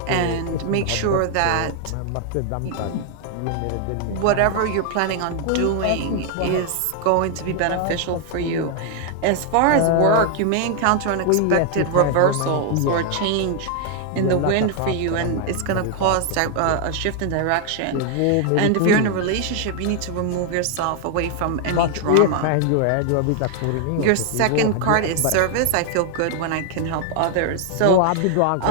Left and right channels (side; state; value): both; different; correlation 0.00